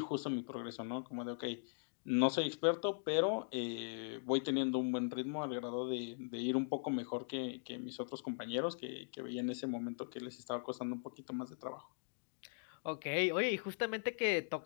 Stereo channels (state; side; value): silent; right; digital silence